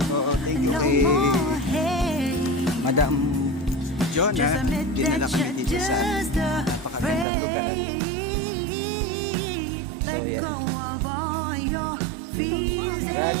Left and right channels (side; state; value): left; drops out; at 7.2 s